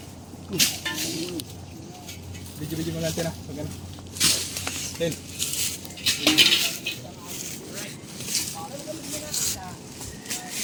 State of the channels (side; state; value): both; identical; correlation 1.00